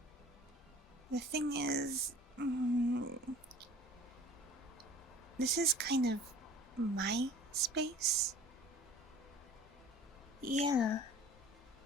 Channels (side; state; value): both; normal; correlation 0.46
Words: the thing is, this is kind of my space. Yeah.